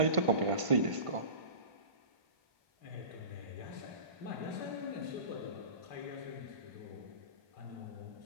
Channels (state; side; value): late; left; 1.5 ms